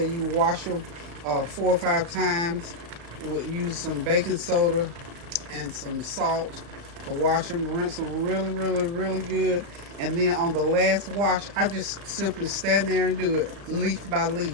you wash them 4 or 5 times. Use some baking soda and some salt to wash them. Rinse them really, really, really good. And then on the last wash, I just simply stand there and do it leaf by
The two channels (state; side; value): late; left; 35 ms